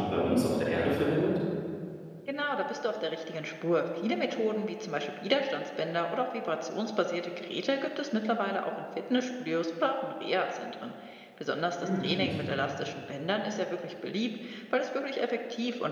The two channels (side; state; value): both; identical; correlation 1.00